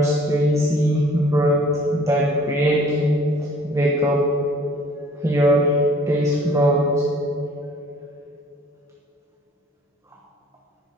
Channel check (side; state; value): both; normal; correlation 0.53